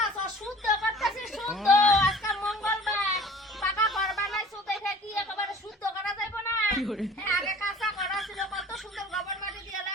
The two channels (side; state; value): both; normal; correlation 0.47